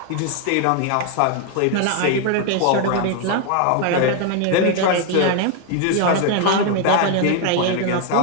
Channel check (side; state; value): both; different; correlation 0.00